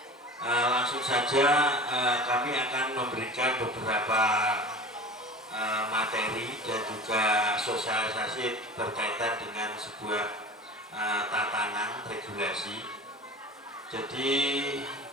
langsung saja kami akan memberikan beberapa materi dan juga sosialisasi berkaitan dengan sebuah tatanan regulasi. Jadi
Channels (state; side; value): normal; both; correlation 0.36